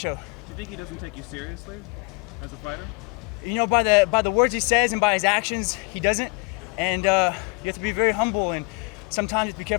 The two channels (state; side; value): quieter; right; 29.6 dB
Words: Do you think he doesn't take you seriously as a fighter? By the words he says and by his actions, he doesn't. And you have to be very humble, and sometimes you have to be